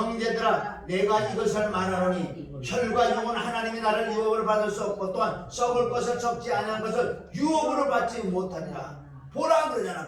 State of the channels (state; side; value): identical; both; correlation 1.00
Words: 내가 이것을 말하노니 혈과 영은 하나님이 나를 유업으로 받을 수 없고 또한 썩을 것을 썩지 아니한 것을 유업으로 받지 못하리라. 보라